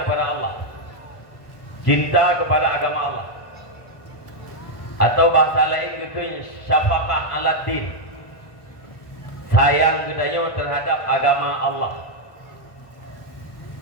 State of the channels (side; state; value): right; late; 1.1 ms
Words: kepada Allah, cinta kepada agama Allah, atau bahasa lain itu syafaqah ala din, sayang kita terhadap agama Allah.